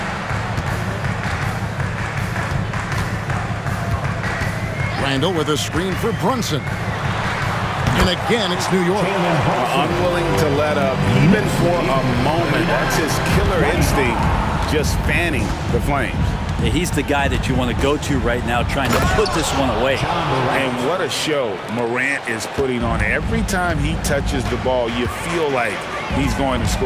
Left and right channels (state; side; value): identical; both; correlation 1.00